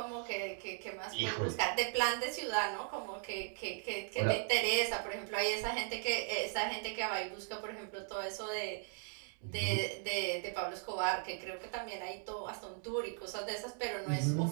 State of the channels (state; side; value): silent; left; 52 dB below the other